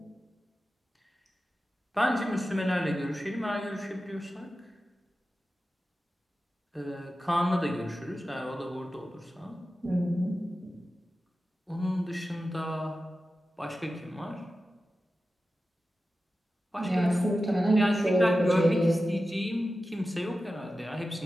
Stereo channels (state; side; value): normal; both; correlation 0.93